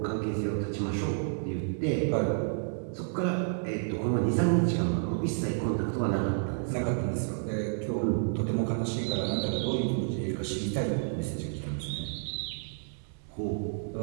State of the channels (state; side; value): silent; left; digital silence